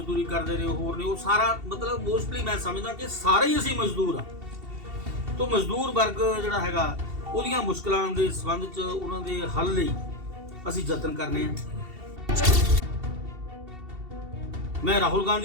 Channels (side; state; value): left; late; 2.7 ms